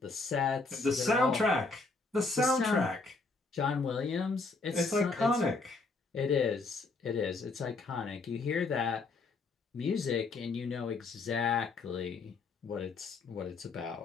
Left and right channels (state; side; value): quieter; right; 3.8 dB